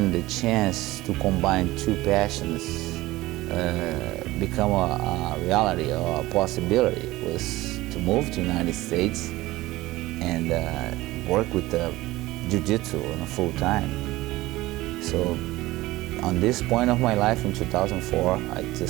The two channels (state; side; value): quieter; left; 18.3 dB